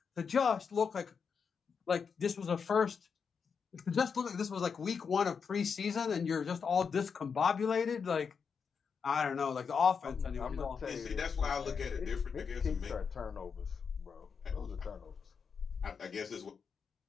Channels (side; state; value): right; quieter; 6.1 dB